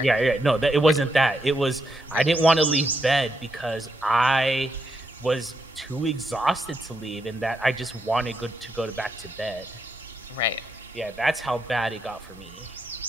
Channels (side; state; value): both; normal; correlation 0.81